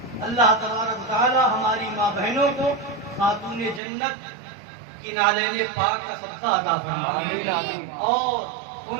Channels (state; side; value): drops out; left; at 3.8 s